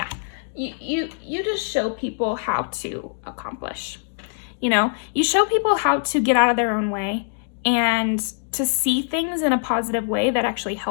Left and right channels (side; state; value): right; silent; digital silence